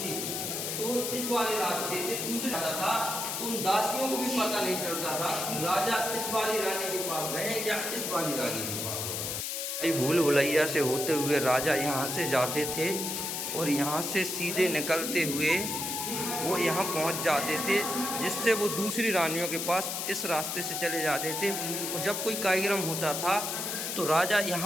तो इस वाले रास्ते से दूसरे राजा था तो उन दासियों को भी पता नहीं चलता था कि राजा इस वाली रानी के पास गए या इस वाली रानी के पास। भूल भुलैया से होते हुए राजा यहाँ से जाते थे और यहाँ से सीधे निकलते हुए वो यहाँ पहुँच जाते थे जिससे वो दूसरी रानियों के पास इस रास्ते से चले जाते थे। और जब कोई कार्यक्रम होता था तो राजा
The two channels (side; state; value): left; noise; hiss, 3 dB below the sound